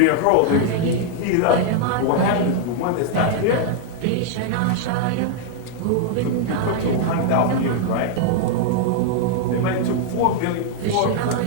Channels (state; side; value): different; both; correlation -0.01